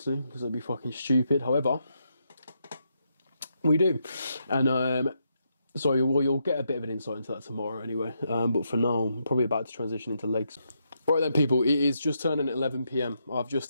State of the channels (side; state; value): both; inverted; correlation -0.80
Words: because it'd be fucking stupid. However, we do. And so you'll get a bit of an insight into that tomorrow anyway. But for now, I'm probably about to transition into legs. Right then, people, it is just turning 11 p.m. I've